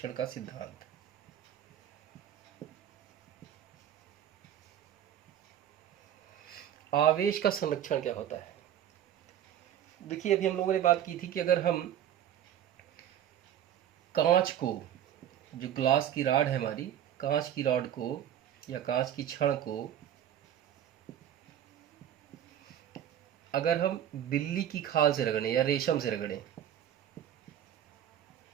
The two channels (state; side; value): quieter; left; 10.5 dB